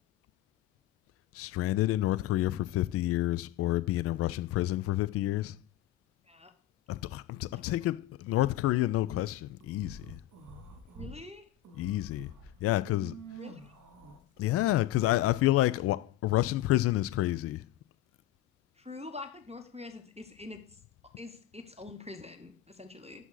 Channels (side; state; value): right; quieter; 14.6 dB